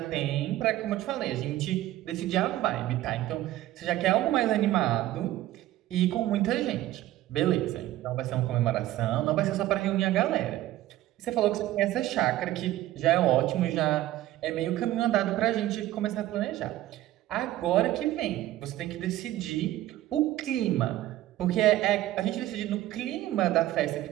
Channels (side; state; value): left; quieter; 14.9 dB